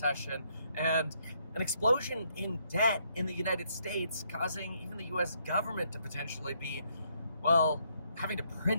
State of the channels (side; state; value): both; inverted; correlation -0.72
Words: and an explosion in debt in the United States, causing even the US government to potentially be, well, having to